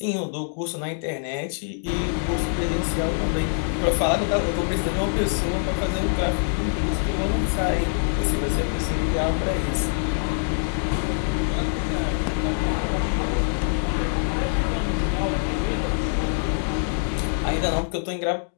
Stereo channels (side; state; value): right; silent; digital silence